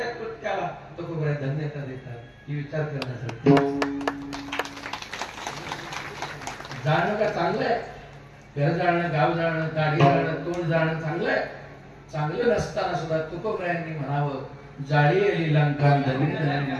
कृत्याला तुकोबराय धन्यता देतात ही विचार करण्यासाठी. जाणं का चांगलं आहे घर जाणं गाव जाणं गाडी जाणं तोंड जाणं चांगलं आहे. चांगलं नसताना सुद्धा तुकोबरायांनी म्हणावं जाळी आली लंका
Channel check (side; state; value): both; identical; correlation 1.00